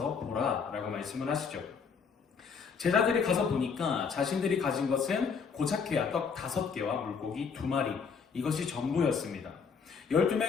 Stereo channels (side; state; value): right; quieter; 5.9 dB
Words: 보라 라고 말씀을 하시죠. 제자들이 가서 보니까 자신들이 가진 것은 고작해야 떡 5개와 물고기 2마리, 이것이 전부였습니다.